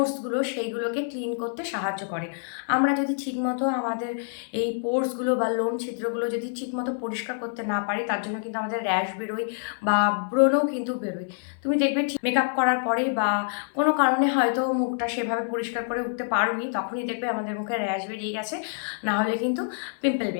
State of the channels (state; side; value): silent; right; digital silence